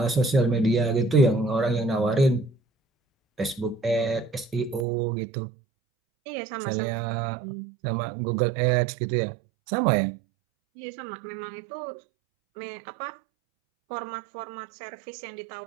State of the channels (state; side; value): drops out; left; at 4.9 s